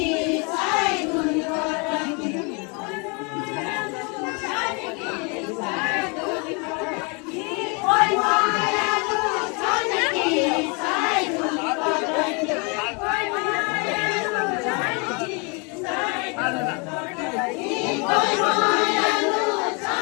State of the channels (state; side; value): quieter; right; 32.5 dB